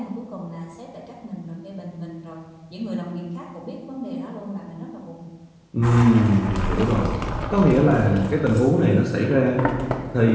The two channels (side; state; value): both; identical; correlation 1.00